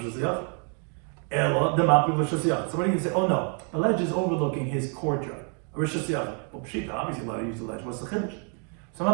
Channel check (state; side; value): quieter; left; 39.9 dB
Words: Hashanah. Ela the mapik Rosh Hashanah. So what do you say? Oh no, the ledge is overlooking his courtyard. Rosh Hashanah. Well, Pshita, obviously allowed to use the ledge. What's the chiddush? So the